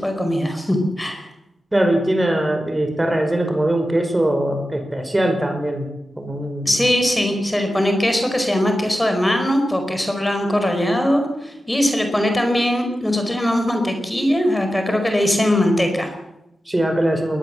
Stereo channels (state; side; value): normal; both; correlation 0.92